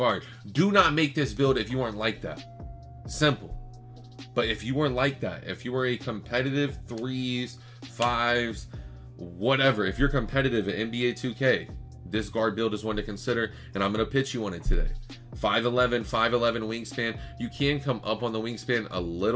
do not make this build if you aren't like that. Simple. But if you are like that, if you are a competitive 3s, 5s, whatever, if you're competitive at NBA 2K, this guard build is one to consider, and I'm going to pitch you on it today. 5'11", 5'11" wingspan. You can come up on the wingspan a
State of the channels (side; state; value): both; identical; correlation 1.00